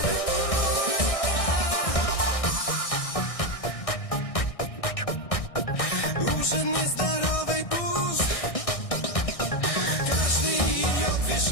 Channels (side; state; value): right; late; 1.6 ms